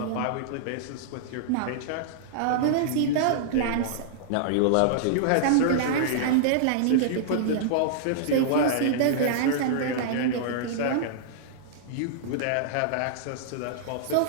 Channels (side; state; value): both; different; correlation -0.02